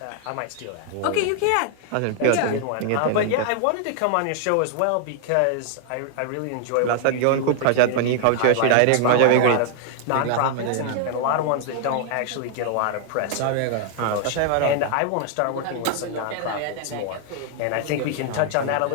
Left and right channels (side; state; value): both; different; correlation 0.00